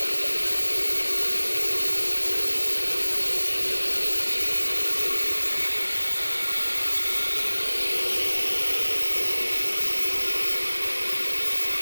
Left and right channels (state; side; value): inverted; both; correlation -1.00